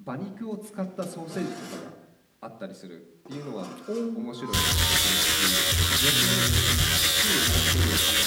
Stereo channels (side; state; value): both; identical; correlation 1.00